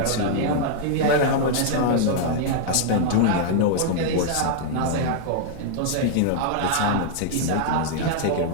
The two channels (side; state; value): both; different; correlation -0.01